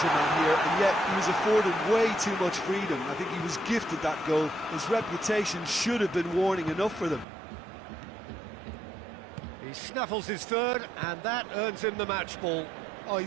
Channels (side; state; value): left; drops out; at 7.2 s